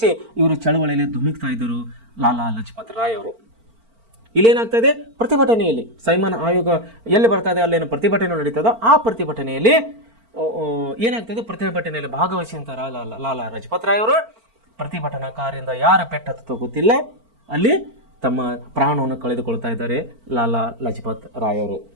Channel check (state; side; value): late; left; 4.4 ms